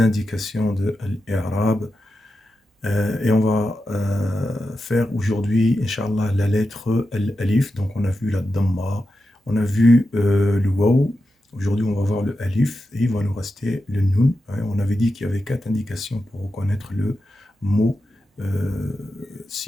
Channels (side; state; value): both; normal; correlation 0.89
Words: de l'Arab. Et on va faire aujourd'hui, Inch'Allah, la lettre Al-Alif. Donc on a vu la Dhamma, on a vu le Waw. Aujourd'hui, on va voir le Alif et il va nous rester le Nun. On avait dit qu'il y avait 4 indications pour reconnaître le mot